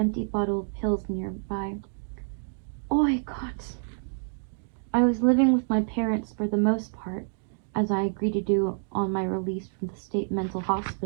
bottle of pills nearby. Oi, Gott! I was living with my parents for the most part, as I agreed to do on my release from the state mental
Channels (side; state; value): left; silent; digital silence